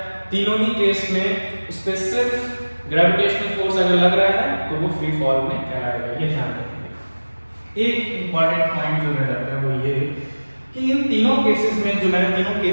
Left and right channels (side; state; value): both; inverted; correlation -1.00